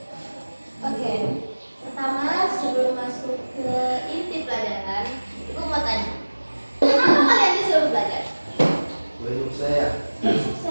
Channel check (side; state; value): both; inverted; correlation -1.00